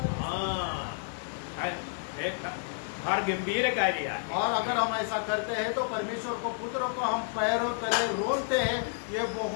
फार गंभीर कार्य आहे. और अगर हम ऐसा करते हैं तो परमेश्वर को पुत्र को हम पैरों तले रोनते हैं. ये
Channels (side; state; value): right; silent; 58 dB below the other